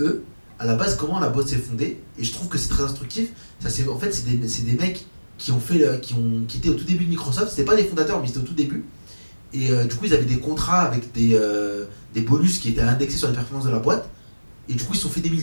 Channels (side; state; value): both; inverted; correlation -1.00